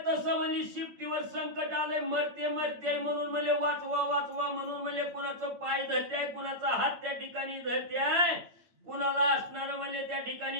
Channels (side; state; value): left; late; 8.7 ms